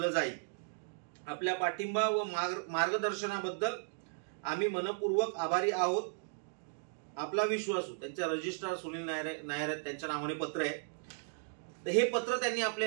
जाईल. आपल्या पाठिंबा व मार्गदर्शनाबद्दल आम्ही मनपूर्वक आभारी आहोत. आपला विश्वासू. त्यांचे रजिस्ट्रार सुनील नायर त्यांच्या नावाने पत्र आहे. तर हे पत्र त्यांनी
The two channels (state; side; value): silent; left; digital silence